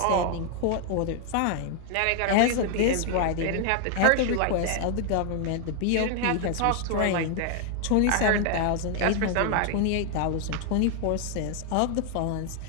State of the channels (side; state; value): both; different; correlation 0.00